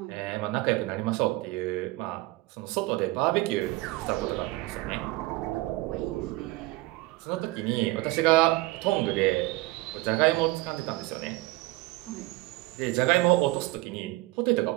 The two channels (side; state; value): left; quieter; 20.5 dB